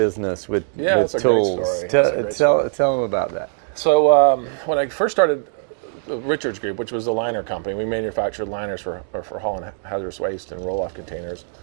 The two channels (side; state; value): left; silent; 65 dB below the other